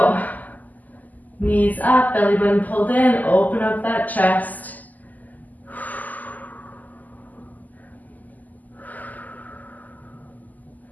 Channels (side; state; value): right; late; 0.081 ms